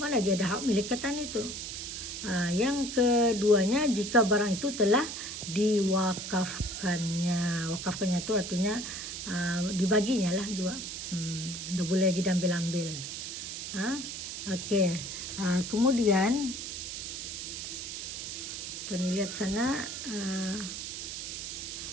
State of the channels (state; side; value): noise; right; hiss, 6 dB below the sound